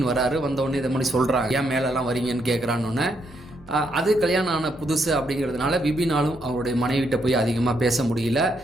வராரு. வந்தவுடனே இதை மாதிரி சொல்கிறாங்க, ஏன் மேலெல்லாம் வரீங்கன்னு கேட்குறான்னு. அது கல்யாணம் ஆன புதுசு அப்படிங்கிறதுனால விபினாலும் அவருடைய மனைவிட்ட போய் அதிகமாக பேச முடியல.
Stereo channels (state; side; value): normal; both; correlation 0.77